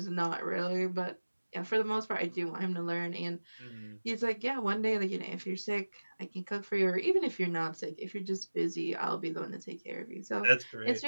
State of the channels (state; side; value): inverted; both; correlation -1.00